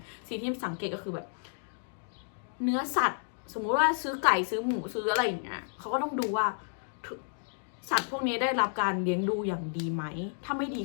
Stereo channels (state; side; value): silent; right; digital silence